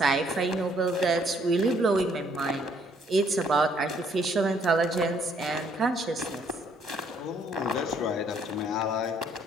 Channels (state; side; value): normal; both; correlation 0.66